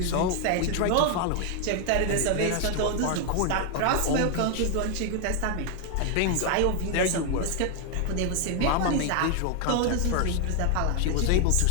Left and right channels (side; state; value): both; different; correlation 0.01